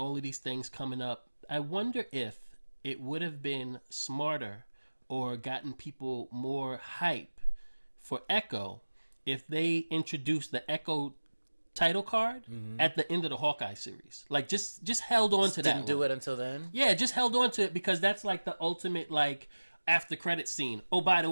of these things coming up. I wonder if it would have been smarter or gotten people more hype for Echo if they introduced the Echo title card at the end of the Hawkeye series. Like just held on to that. Didn't do it until then? Yeah, just held on to it because that's like the ultimate after credit scene. Oh, by the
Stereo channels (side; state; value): both; inverted; correlation -1.00